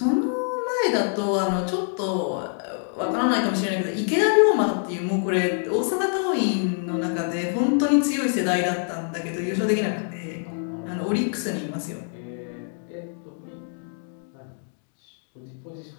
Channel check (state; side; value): silent; right; 61 dB below the other